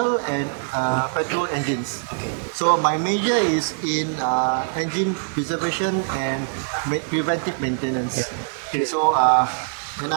and petrol engines. Okay. So my major is in engine preservation and preventive maintenance. Okay, so when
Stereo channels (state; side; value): silent; left; digital silence